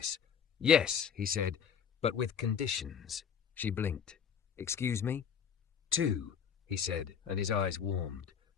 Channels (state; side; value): quieter; right; 7.5 dB